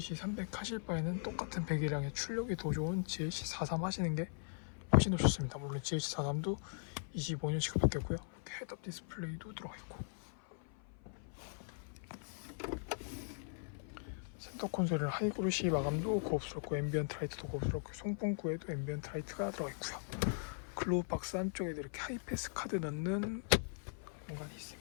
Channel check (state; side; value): silent; right; 51 dB below the other